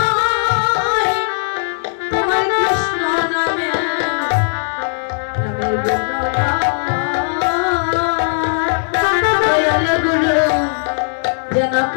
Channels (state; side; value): silent; right; 68 dB below the other